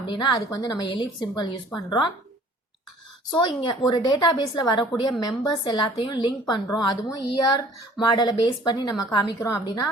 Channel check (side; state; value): both; normal; correlation 0.52